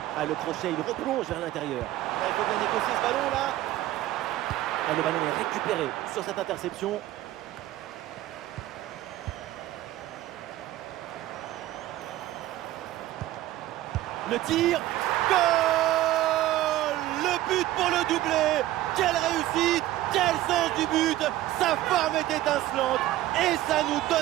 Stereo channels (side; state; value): left; quieter; 15.0 dB